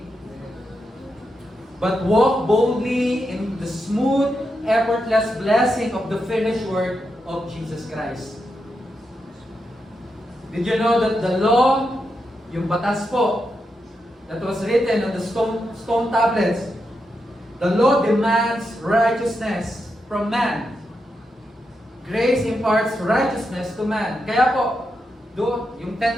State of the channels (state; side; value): normal; both; correlation 0.85